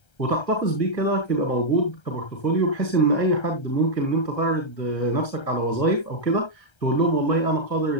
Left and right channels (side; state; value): right; late; 1.3 ms